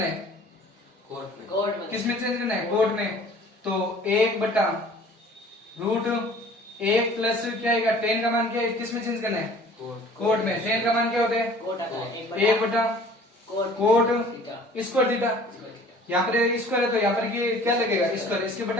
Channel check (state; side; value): normal; both; correlation 0.50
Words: है, कोट में। किस में चेंज करना है, कोट में। तो 1 बटा रूट 1 प्लस क्या आएगा, 10 का मान क्या है, किस में चेंज करना है, कोट में। 10 का मान क्या होता है, कोट आता है 1 बटा कोट स्क्वायर थीटा। यहाँ पर स्क्वायर है तो यहाँ पर क्या लगेगा, स्क्वायर। इसके